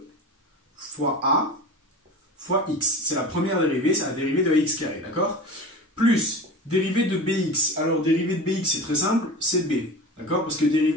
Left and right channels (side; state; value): both; normal; correlation 0.32